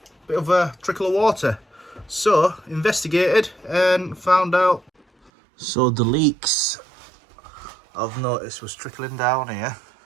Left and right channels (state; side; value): drops out; left; at 5.3 s